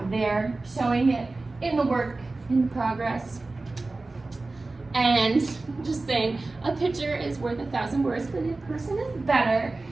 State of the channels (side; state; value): left; quieter; 3.3 dB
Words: there, showing it in the work, in the progress. And just saying, a picture is worth 1,000 words, but in person is better.